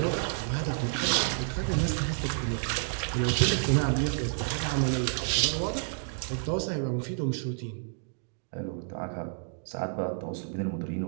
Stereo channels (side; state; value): left; silent; digital silence